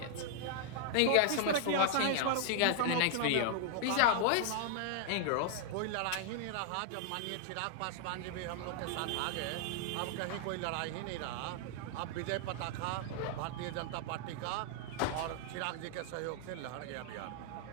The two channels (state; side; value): different; both; correlation 0.00